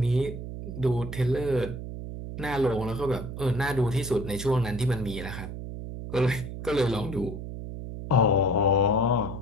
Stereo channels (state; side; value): noise; right; hum, 8 dB below the sound